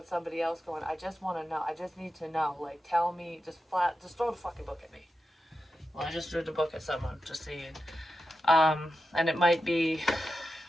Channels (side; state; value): both; normal; correlation 0.90